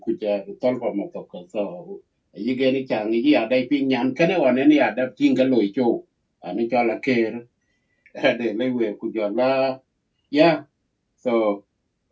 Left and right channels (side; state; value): both; identical; correlation 1.00